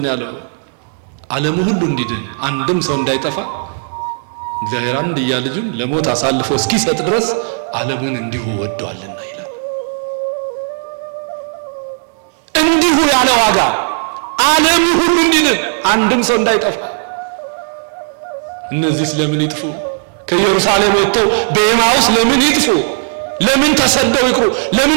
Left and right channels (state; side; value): silent; left; digital silence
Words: ያለው? ዓለሙ ሁሉ እንዲድን አንድም ሰው እንዳይጠፋ እግዚአብሔር አንድያ ልጁን ለሞት አሳልፎ እስኪሰጥ ድረስ ዓለሙን እንዲሁ ወዷልና ይላል። እንዲሁ ያለ ዋጋ ዓለሙ ሁሉ እንዲድን አንድም ሰው እንዳይጠፋ። እነዚህ ስለምን ይጥፉ? ከኢየሩሳሌም ወጥተው በኤማውስ ለምን ይጥፉ? ለምን ተሰደው ይቅሩ?